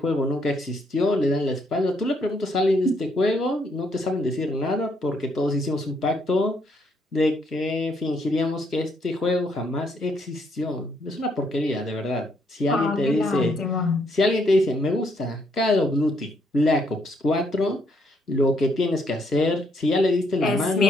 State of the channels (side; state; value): both; normal; correlation 0.72